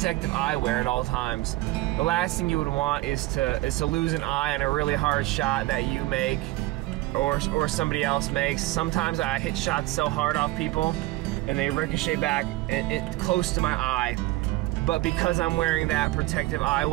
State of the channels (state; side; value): quieter; left; 18.3 dB